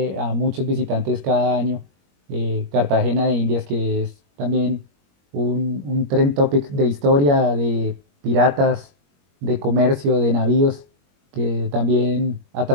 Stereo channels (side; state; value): left; late; 21 ms